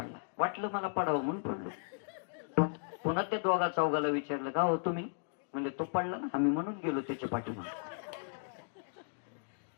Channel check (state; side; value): silent; right; digital silence